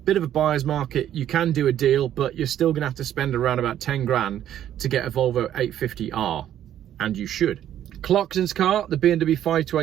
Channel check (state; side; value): quieter; left; 11.1 dB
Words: Bit of a buyer's market. You can do a deal, but you're still going to have to spend around about 10 grand to get a Volvo 850R. And you should. Clarkson's car, the BMW